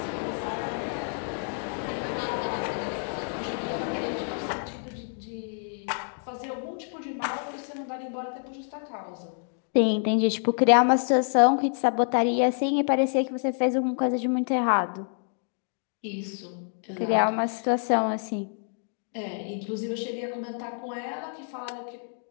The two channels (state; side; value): silent; right; 59 dB below the other